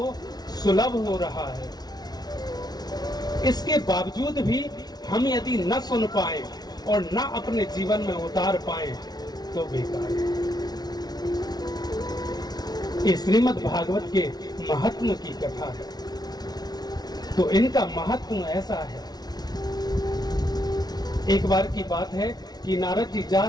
सुलभ हो रहा है। इसके बावजूद भी हम यदि न सुन पाए और न अपने जीवन में उतार पाए तो बेकार है। ये श्रीमद् भागवत के महात्म की कथा है। तो इनका महत्व ऐसा है। एक बार की बात है कि नारद जी जा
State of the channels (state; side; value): late; right; 0.19 ms